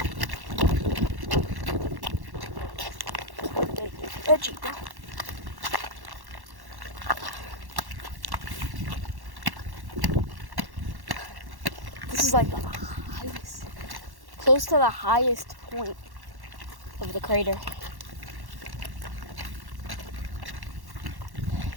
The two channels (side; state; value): left; late; 1.1 ms